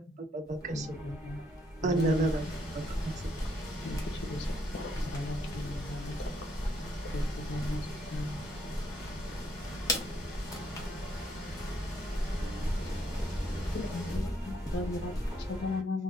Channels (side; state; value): both; normal; correlation 0.72